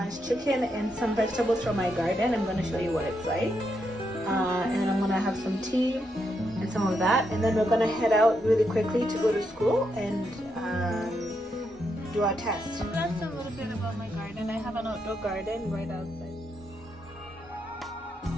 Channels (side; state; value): both; normal; correlation 0.81